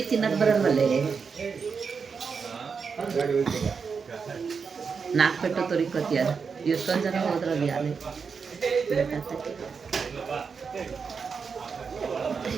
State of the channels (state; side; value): quieter; left; 5.7 dB